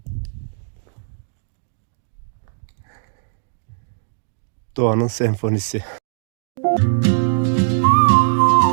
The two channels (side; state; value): left; silent; digital silence